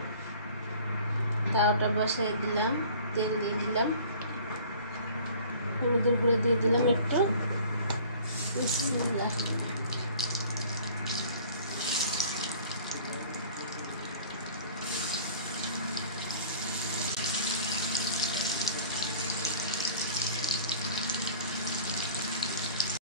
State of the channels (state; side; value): inverted; both; correlation -0.47